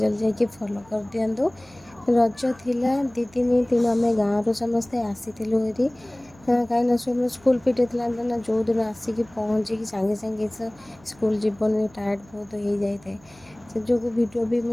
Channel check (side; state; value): right; noise; hum, 26 dB below the sound